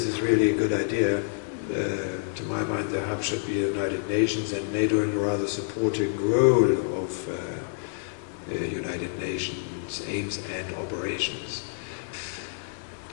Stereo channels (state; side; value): silent; right; 58 dB below the other